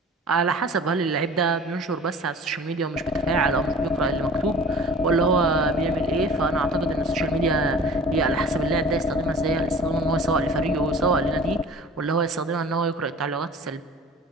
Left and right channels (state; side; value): normal; both; correlation 0.44